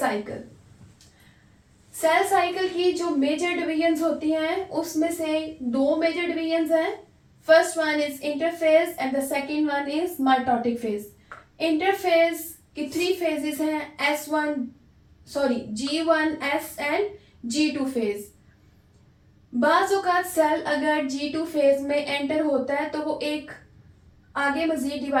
Cell cycle की जो मेजर डिवीजन्स होती हैं उसमें से दो मेजर डिवीजन्स हैं। First one is interphase and the second one is mitotic phase. Interphase की 3 फेजेस हैं, G1, S and G2 phase. बाज़ औक़ात सेल अगर G2 फेज में एंटर होता है तो वो एक आगे मजीद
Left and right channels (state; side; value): identical; both; correlation 1.00